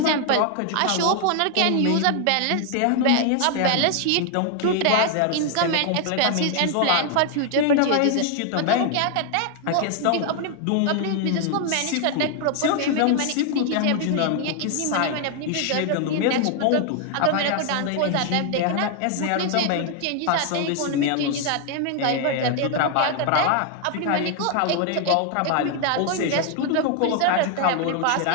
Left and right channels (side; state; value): both; different; correlation 0.00